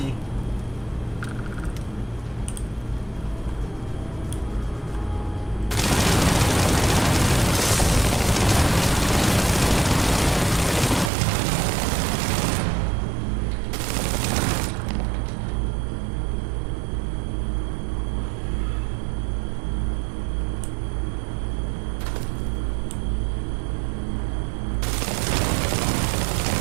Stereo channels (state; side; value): drops out; left; at 11.1 s